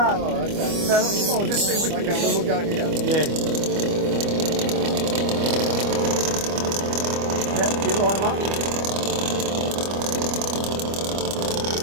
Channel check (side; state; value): left; late; 25 ms